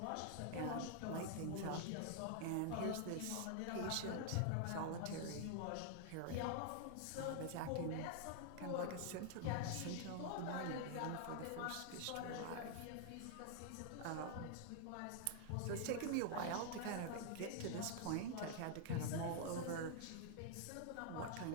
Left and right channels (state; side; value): different; both; correlation -0.01